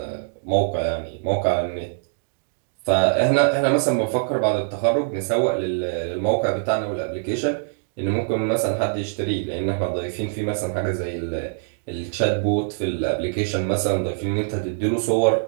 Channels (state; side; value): silent; left; digital silence